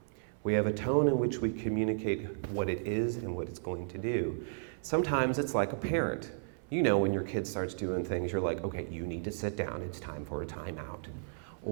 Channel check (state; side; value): silent; left; 55 dB below the other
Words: We have a tone in which we communicate what it is and what it's going to do. Sometimes it's like a parent. You know, when your kid starts doing things, you're like, okay, you need to sit down. It's time for a timeout.